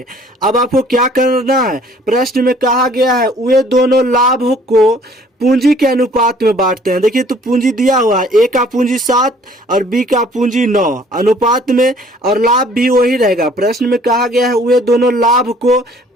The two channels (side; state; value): both; normal; correlation 0.56